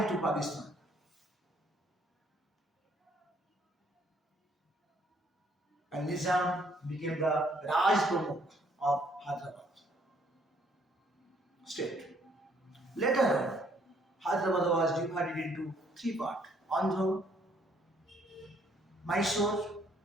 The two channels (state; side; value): normal; both; correlation 0.66